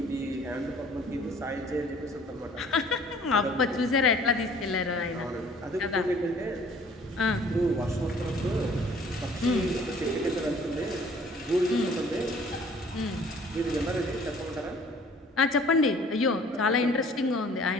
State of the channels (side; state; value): both; normal; correlation 0.54